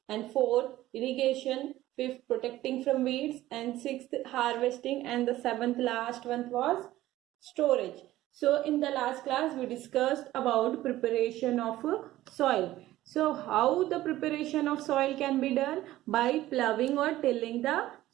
and fourth irrigation, fifth protecting from weeds, and sixth harvesting, and the seventh last one was storage. So in the last class we discussed about preparation of soil. So how the preparation of soil can be done? By ploughing or tilling the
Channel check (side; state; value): left; quieter; 15.4 dB